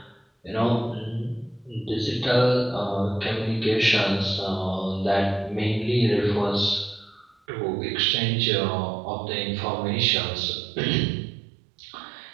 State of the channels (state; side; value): drops out; left; at 7.4 s